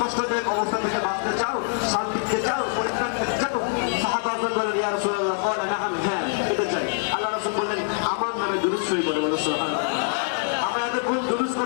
অবস্থা থেকে বাঁচতে চাও শান্তি পেতে চাও পরিত্রাণ পেতে চাও সাহাবাগণ বলেন ইয়া রাসূলুল্লাহ ক্বালা নাআম হ্যাঁ পেতে চাই আল্লাহ রাসূল বললেন আমার নামে দুরূদ শরীফ পড়ে বলো সুবহানাল্লাহ আমরা এতক্ষণ দুরূদ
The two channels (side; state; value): right; silent; digital silence